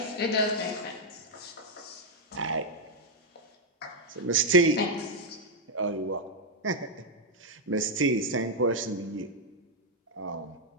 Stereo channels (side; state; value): both; normal; correlation 0.00